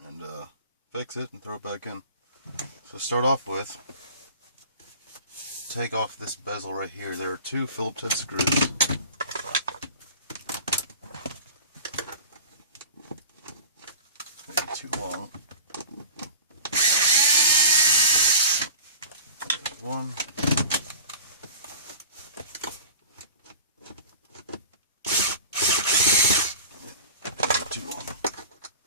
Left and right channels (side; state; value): both; inverted; correlation -0.37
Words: and fix it and throw it back in. So start off with, take off this bezel right here. There are two Phillips head screws. Maybe too long. There's one. Too long.